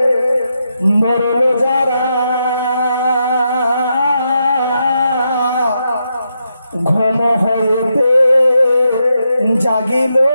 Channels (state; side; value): inverted; both; correlation -0.83